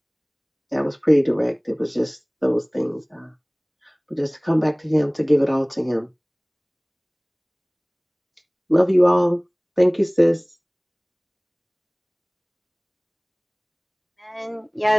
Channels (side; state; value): both; identical; correlation 1.00